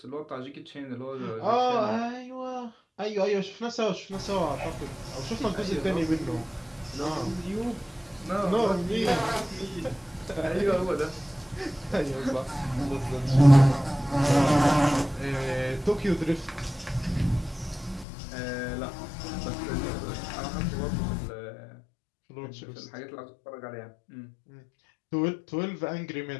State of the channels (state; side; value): drops out; right; at 18.1 s